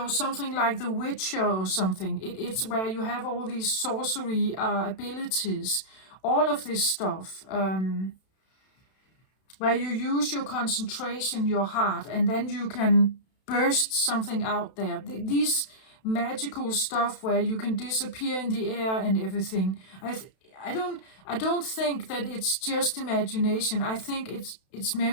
something like The Witcher or something. It's where you have all these sorcery abilities, all of this stuff, where you use your concentration, your heart, and then you can burst something out there. These magical stuff where you can disappear in the air and everything. I don't think that it's just imagination. I think it's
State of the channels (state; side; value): late; right; 32 ms